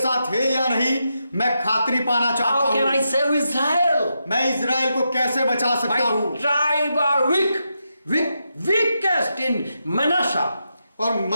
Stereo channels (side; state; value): both; inverted; correlation -0.85